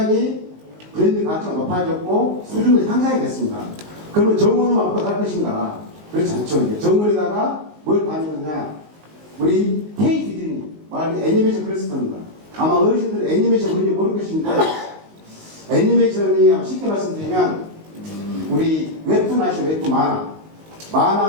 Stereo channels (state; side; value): late; left; 19 ms